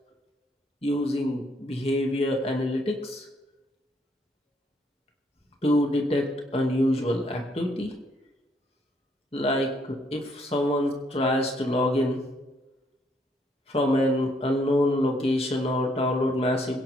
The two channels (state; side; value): normal; both; correlation 0.70